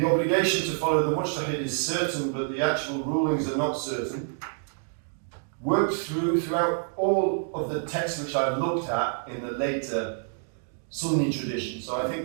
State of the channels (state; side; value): silent; left; digital silence